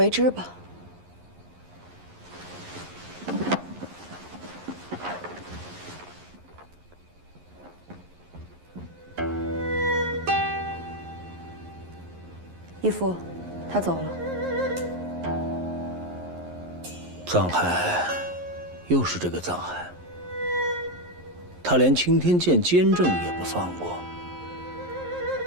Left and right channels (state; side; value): late; left; 11 ms